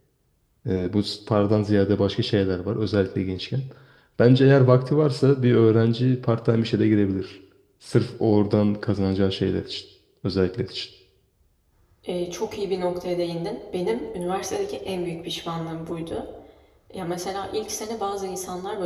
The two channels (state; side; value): identical; both; correlation 1.00